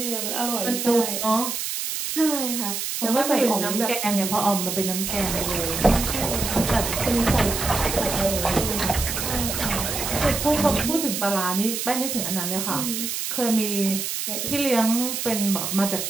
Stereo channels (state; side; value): noise; right; hiss, 3 dB below the sound